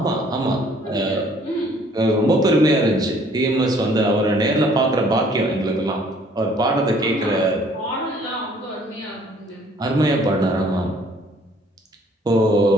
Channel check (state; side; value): normal; both; correlation 0.59